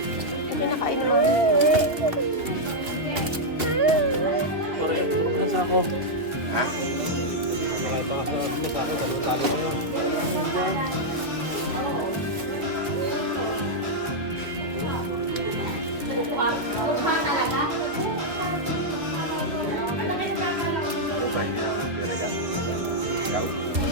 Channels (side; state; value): left; late; 2.5 ms